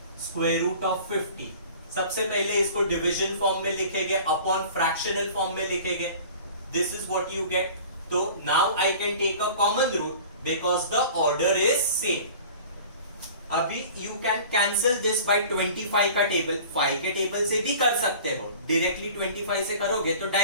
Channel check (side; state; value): both; inverted; correlation -0.43